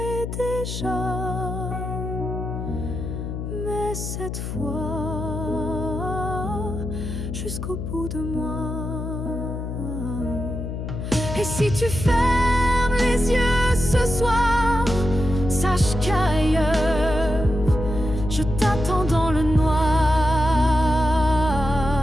déjà, mais cette fois jusqu'au bout de moi. Et si tu fermes les yeux ce soir, sache qu'ailleurs je t'attends dans le noir.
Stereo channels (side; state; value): left; noise; hum, 5 dB below the sound